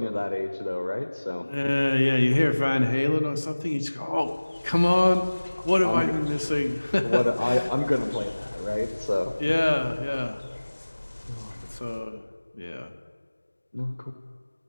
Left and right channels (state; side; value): inverted; both; correlation -1.00